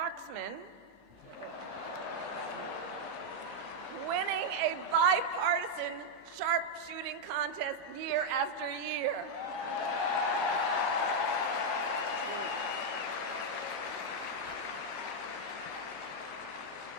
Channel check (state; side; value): late; right; 16 ms